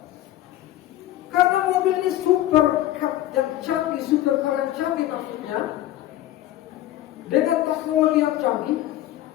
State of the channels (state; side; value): quieter; right; 14.1 dB